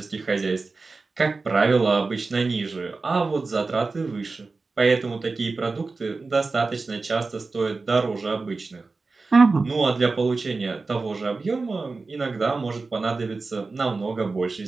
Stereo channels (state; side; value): quieter; left; 3.9 dB